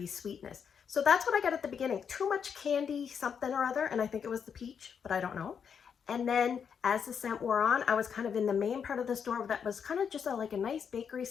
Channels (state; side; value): quieter; right; 7.1 dB